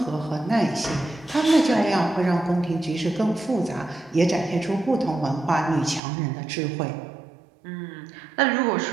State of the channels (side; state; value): left; drops out; at 6.0 s